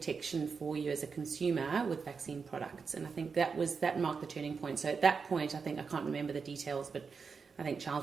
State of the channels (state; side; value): quieter; left; 5.4 dB